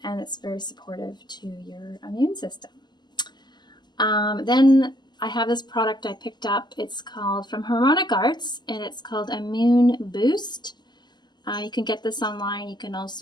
and it's very supportive to your immune system. Then I have this product I picked up. It's called from Harmonic Arts, and it's called Immune Boost. You can get this online. You can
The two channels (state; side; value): late; right; 0.21 ms